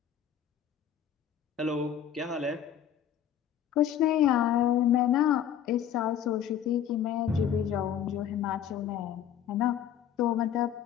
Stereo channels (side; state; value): right; quieter; 9.4 dB